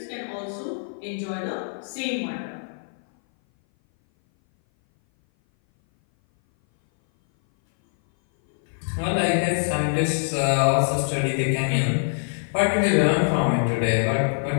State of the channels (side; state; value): right; silent; 58 dB below the other